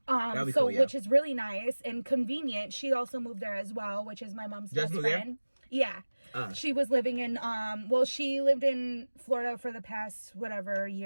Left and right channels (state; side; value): inverted; both; correlation -1.00